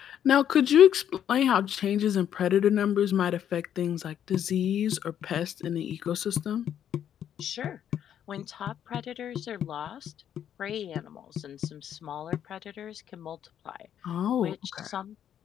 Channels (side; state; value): right; quieter; 9.8 dB